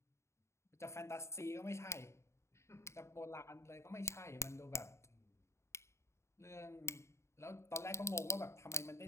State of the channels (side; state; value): right; late; 0.13 ms